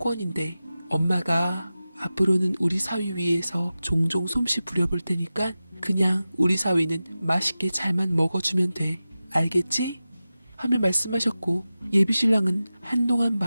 엄마가 앞으로는 우리 사위 위해서 종종 솜씨 부려볼 테니까 그냥 우리 사위는 맛있게 잘만 먹어주면 돼. 알겠지? 하며 말씀하셨고 예비신랑은 한동안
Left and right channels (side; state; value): both; inverted; correlation -0.95